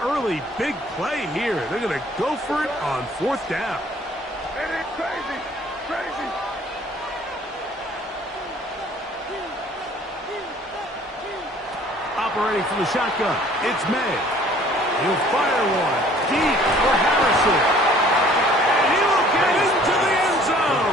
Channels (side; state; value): both; normal; correlation 0.55